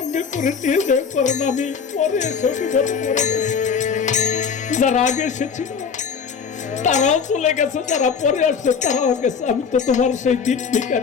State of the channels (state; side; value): quieter; right; 6.2 dB